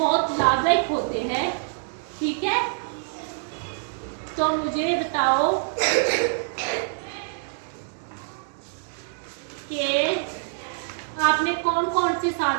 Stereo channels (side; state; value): left; silent; digital silence